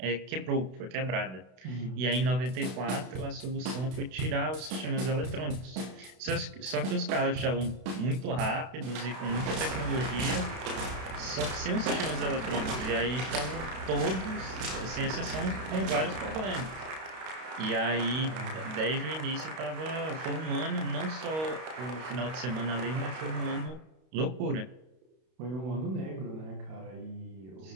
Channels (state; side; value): late; left; 32 ms